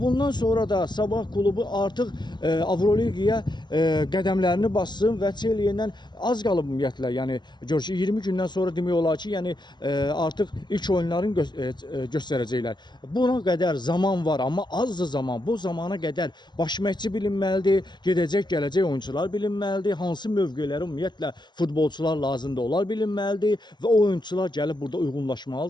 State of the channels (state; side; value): late; right; 0.21 ms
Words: sonra da Sabah klubu artıq Avroliqaya qədəmlərini bassın və Çelye'dən az qalıb ümumiyyətlə. Yəni gör ki 20 gündən sonra demək olar ki, yəni artıq ilk oyunlarını göstərəcəklər. Buna qədər zaman var, amma azdır zaman. Bu zamana qədər baş məşqçi bilinməlidir, gedəcək, gələcək oyuncular bilinməlidir, hansı mövqelərə ümumiyyətlə futbolçular lazımdır, onlar bilinməlidir və o oyuncular gəlib burada